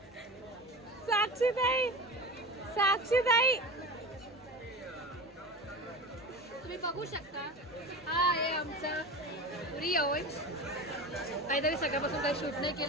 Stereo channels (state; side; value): normal; both; correlation 0.30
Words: साक्षीताई तुम्ही बघू शकता. हा आहे आमचा रिया ओव्हन्स. काहीतरी सकाळपासून काही शूट नाही